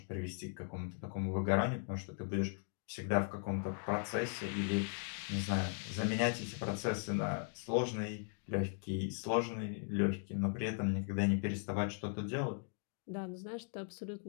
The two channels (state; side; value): silent; right; 52 dB below the other